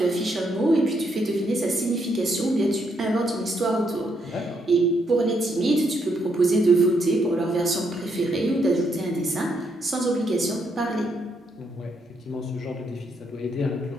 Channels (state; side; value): normal; both; correlation 0.76